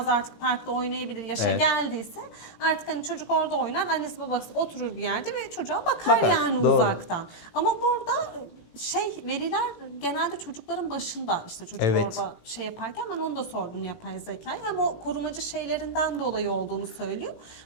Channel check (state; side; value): late; right; 18 ms